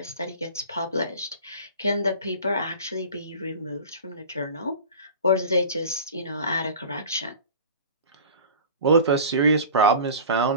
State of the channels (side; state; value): both; inverted; correlation -0.38